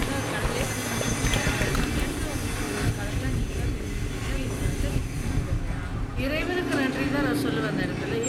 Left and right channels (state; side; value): identical; both; correlation 1.00